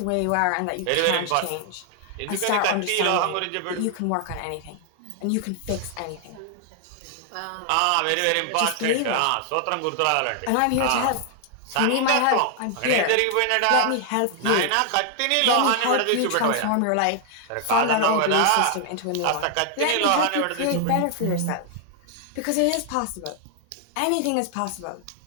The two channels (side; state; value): both; different; correlation 0.00